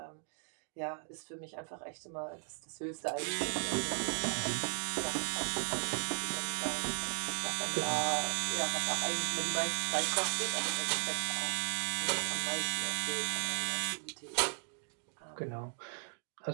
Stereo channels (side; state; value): left; silent; digital silence